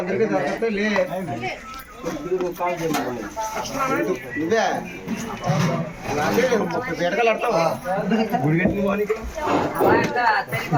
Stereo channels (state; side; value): identical; both; correlation 1.00